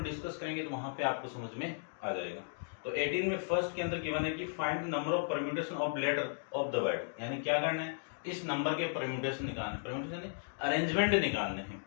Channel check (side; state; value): right; silent; digital silence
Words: डिस्कस करेंगे तो वहां पे आपको समझ में आ जाएगा। तो 18 में फर्स्ट के अंदर गिवन है कि find the number of permutation of letter of the word, यानी क्या करना है, इस नंबर के परम्यूटेशन निकालने, परम्यूटेशन यानी अरेंजमेंट निकालने हैं।